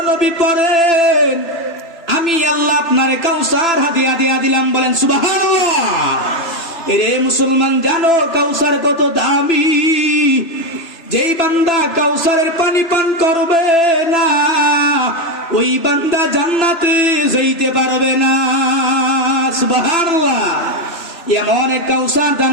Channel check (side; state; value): right; late; 3.0 ms